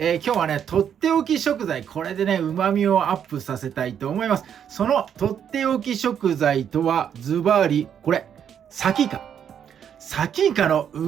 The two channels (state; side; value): quieter; left; 8.6 dB